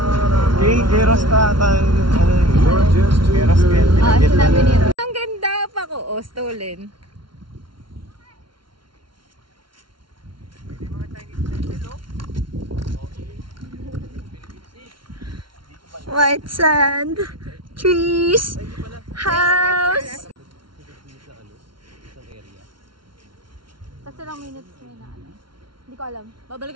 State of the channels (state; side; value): late; left; 0.73 ms